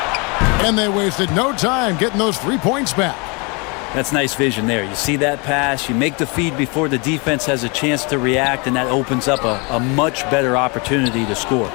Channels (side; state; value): right; quieter; 30.6 dB